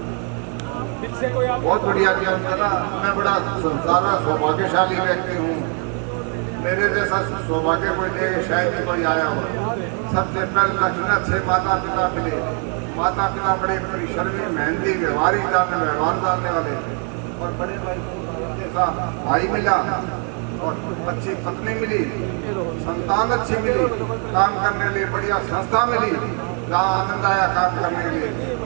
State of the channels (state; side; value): quieter; left; 39.8 dB